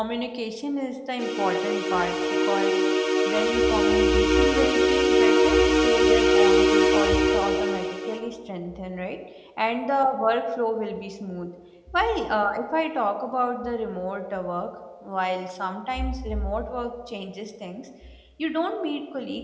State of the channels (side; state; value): both; identical; correlation 1.00